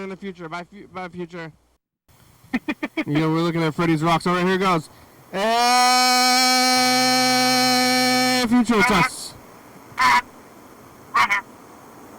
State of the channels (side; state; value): both; identical; correlation 1.00